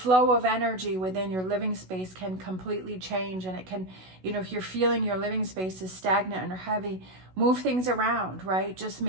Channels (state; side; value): late; left; 16 ms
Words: of energy within your living space can completely change, and it can, if you're feeling your living space is stagnant or heavy, move things around, right? Just